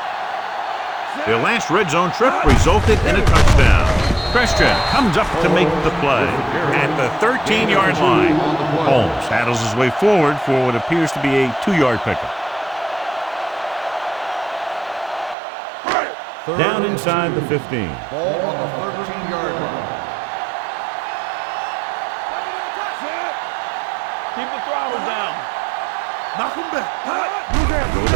Their last red zone trip resulted in a touchdown. Christian comes up to make the play at the 13-yard line. Holmes handles his way forward for what appears to be a 2-yard pickup. Down inside the 15. Ball on the 13-yard line. Keep the throttle down. Knock him back. Go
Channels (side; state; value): left; drops out; at 15.4 s